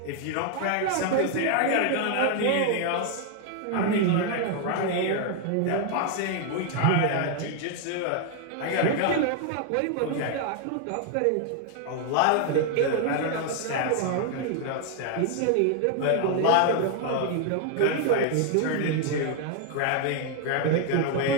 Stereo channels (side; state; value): both; different; correlation 0.00